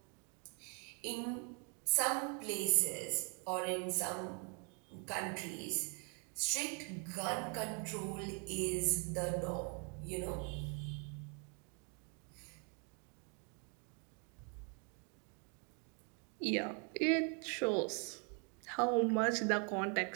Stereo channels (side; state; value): left; quieter; 37.9 dB